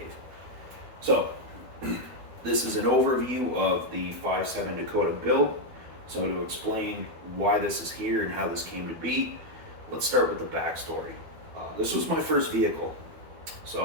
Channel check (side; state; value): left; late; 12 ms